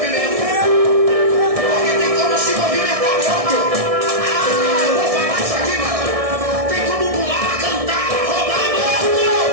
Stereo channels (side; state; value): left; late; 1.6 ms